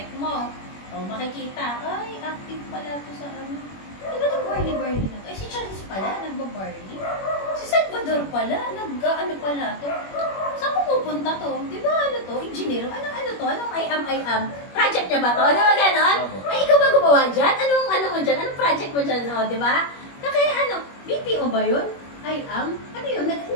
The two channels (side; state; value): right; late; 21 ms